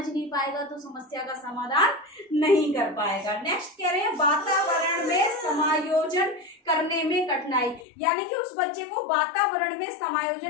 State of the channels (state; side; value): drops out; right; at 7.8 s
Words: नहीं पाएगा तो समस्या का समाधान नहीं कर पाएगा। नेक्स्ट कह रहे हैं, वातावरण में समायोजन करने में कठिनाई। यानी कि उस बच्चे को वातावरण में